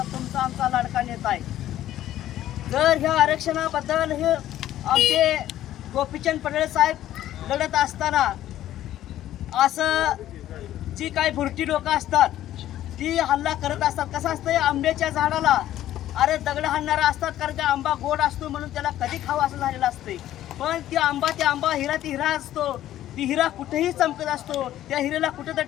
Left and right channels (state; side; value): quieter; right; 13.0 dB